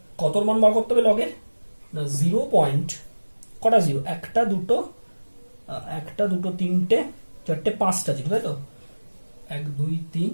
কতর মান বার করতে হবে লগের, না 0. কটা জিরো, একটা দুটো 3টে 4টে 5টা জিরো, তাই তো? 1 2 3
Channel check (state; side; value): inverted; both; correlation -1.00